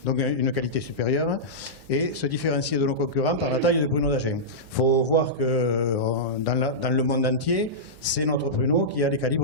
Donc une qualité supérieure et se différencier de nos concurrents par la taille du pruneau d'Agen. Il faut voir que dans le monde entier, c'est notre pruneau qui a les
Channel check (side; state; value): both; normal; correlation -0.14